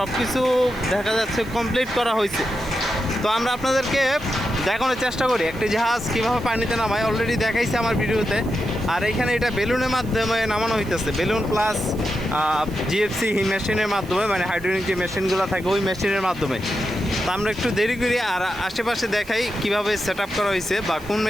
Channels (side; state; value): right; noise; hiss, 22 dB below the sound